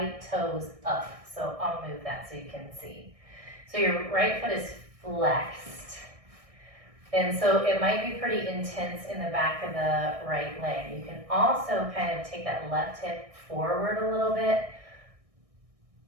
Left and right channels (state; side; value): late; left; 1.6 ms